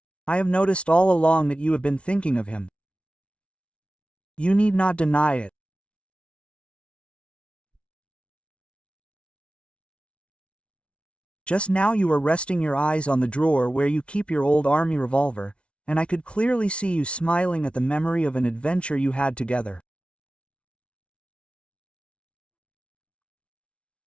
"I have noticed all along that you have been thinking of him. You need not deny it. Just now you were resting your eyes on the drawer where you keep your old army revolver, and I could clearly see you smiling at the memory of an adventure you had together.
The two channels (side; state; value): right; late; 0.060 ms